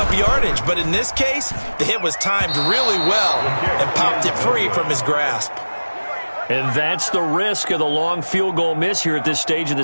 yardage. But in this case, the hit was timed really well and popped it free from his grasp. And that's the risk of the long field goal miss here at this stage of the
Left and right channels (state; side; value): inverted; both; correlation -1.00